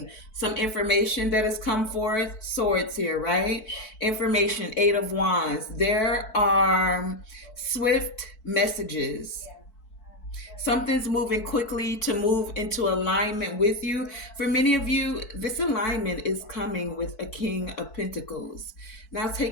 some information that has come forth. Swords here, right? Information, Eight of Wands. There are swift messages. Something's moving quickly to move into alignment with you. For many of you, this alignment is coming with a King of Pentacles. Now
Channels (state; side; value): late; right; 4.6 ms